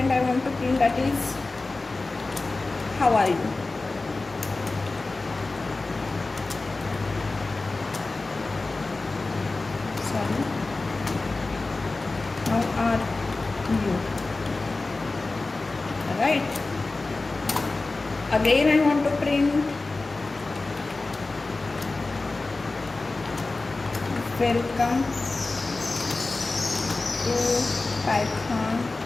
I want to print that is how are you. Sorry, how are you, right. Again I want to print welcome to Python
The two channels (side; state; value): right; quieter; 3.4 dB